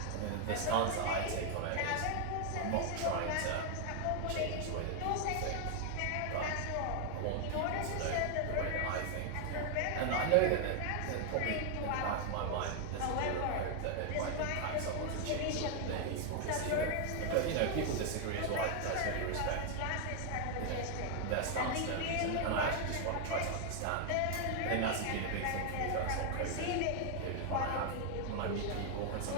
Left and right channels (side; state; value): both; different; correlation 0.00